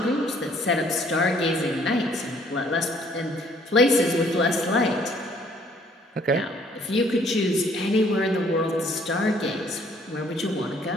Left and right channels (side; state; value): both; normal; correlation 0.61